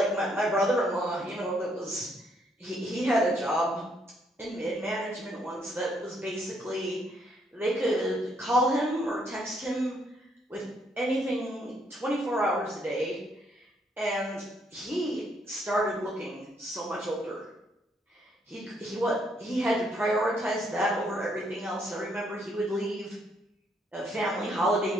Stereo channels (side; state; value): both; normal; correlation 0.71